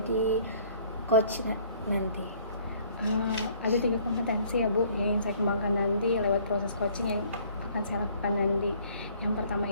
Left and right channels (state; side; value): inverted; both; correlation -0.58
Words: coach nanti? Ada 3 kompetensi ya Bu yang ingin saya kembangkan nanti lewat proses coaching yang akan saya lakukan nanti. Yang pertama